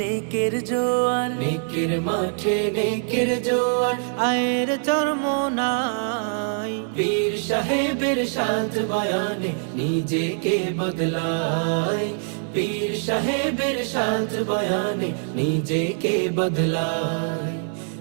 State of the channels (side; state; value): left; silent; 63 dB below the other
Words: নেকের জোয়ার, নেকের মাঠে নেকের জোয়ার, আয়ের চরমোনাই। পীর সাহেবের সাথ বয়ানে নিজেকে বদলায়, পীর সাহেবের সাথ বয়ানে নিজেকে বদলায়।